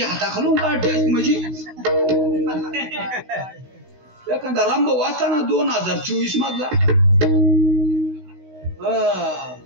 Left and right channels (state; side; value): late; left; 16 ms